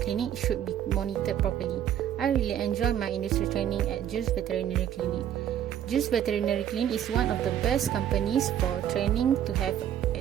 should be monitored properly. I really enjoy my industry training at Jules Veterinary Clinic. Jules Veterinary Clinic is one of the best companies for training to have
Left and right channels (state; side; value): quieter; left; 10.3 dB